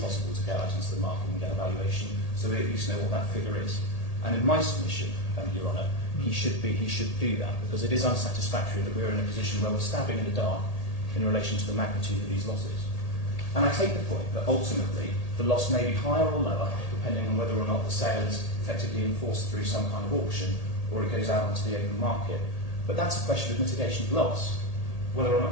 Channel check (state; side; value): late; right; 1.8 ms